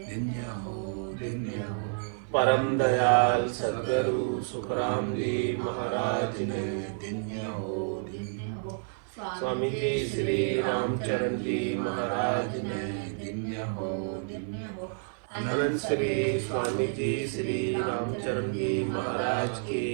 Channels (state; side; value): silent; left; 55 dB below the other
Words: परम दयाल सद्गुरु सुखराम जी महाराज ने, स्वामी जी श्री रामचरण जी महाराज ने, अनंत श्री स्वामी जी श्री रामचरण जी महाराज के